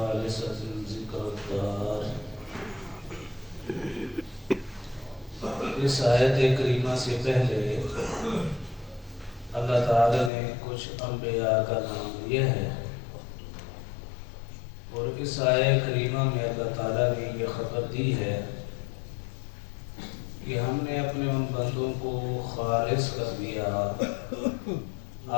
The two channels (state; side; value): drops out; right; at 10.3 s